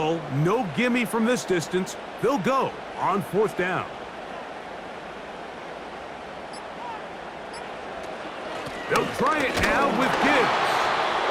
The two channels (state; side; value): identical; both; correlation 1.00